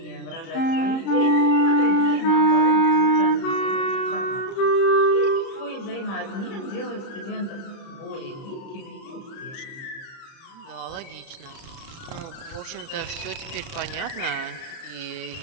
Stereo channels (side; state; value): right; late; 30 ms